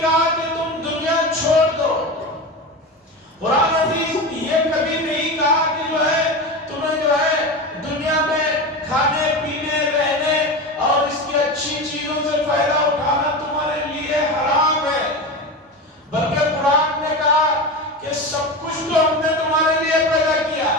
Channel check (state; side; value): normal; both; correlation 0.24